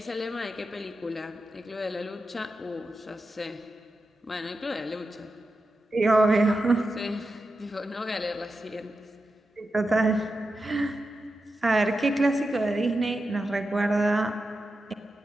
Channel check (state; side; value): normal; both; correlation 0.90